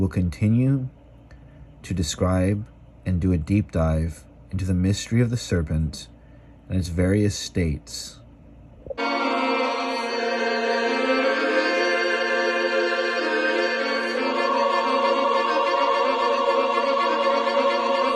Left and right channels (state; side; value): identical; both; correlation 1.00